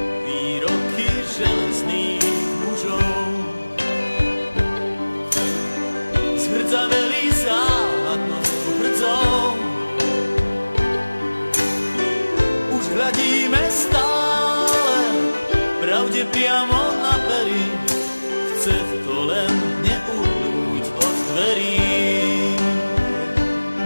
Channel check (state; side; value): inverted; both; correlation -1.00